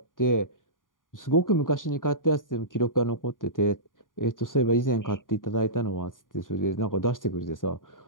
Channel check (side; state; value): right; late; 0.89 ms